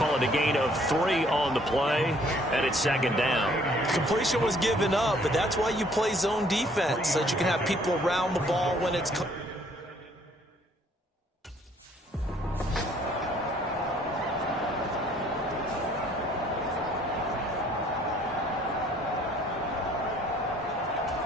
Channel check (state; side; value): normal; both; correlation 0.61